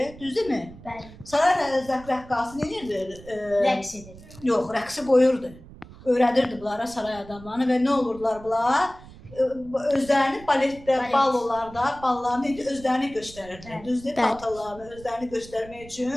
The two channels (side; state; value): right; noise; rumble, 19 dB below the sound